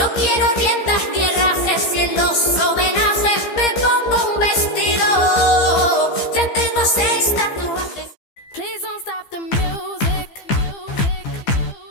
quiero riendas ni herrajes y en los homenajes me pongo un vestido. Ya tengo 6 tatuajes. Please don't stop the music.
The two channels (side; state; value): right; late; 15 ms